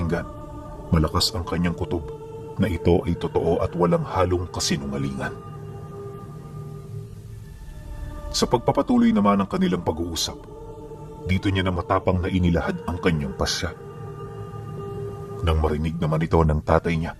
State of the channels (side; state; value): both; identical; correlation 1.00